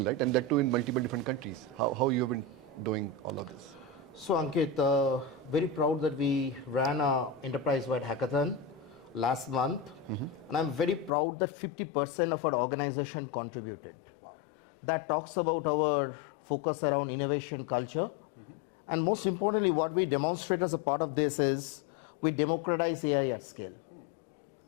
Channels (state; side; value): drops out; right; at 11.1 s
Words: right? And that too in multiple different countries. How you have been doing all of this? So Ankit, very proud that we ran an enterprise-wide hackathon last month, and I'm very proud that 50% of our organization contributed. Wow. That talks about our focus around innovation culture, and most importantly, what we demonstrate as a part of this is we democratize AI at scale.